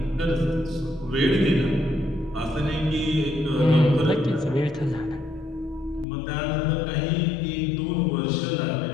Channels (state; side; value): drops out; right; at 6.1 s